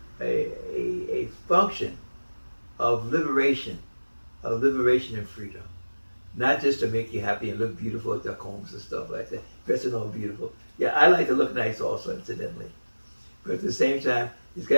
function of liberation and freedom. Not just to make you happy and look beautiful at their combs and stuff like that, dressing all beautiful. Yeah, I like to look nice also, incidentally. But at the same time, it's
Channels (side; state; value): both; inverted; correlation -1.00